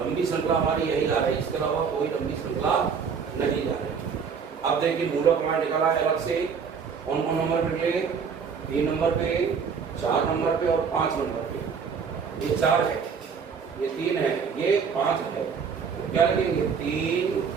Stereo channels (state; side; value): quieter; left; 6.1 dB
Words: लंबी श्रृंखला हमारी यही जा रही है, इसके अलावा कोई लंबी श्रृंखला नहीं जा रही। अब देखिए मूलक हमारा निकला है अलग से। कौन कौन नंबर पे निकले? 3 नंबर पे, 4 नंबर पे और 5 नंबर पे। ये 4 है, ये 3 है, ये 5 है। तो क्या लगेंगे? 3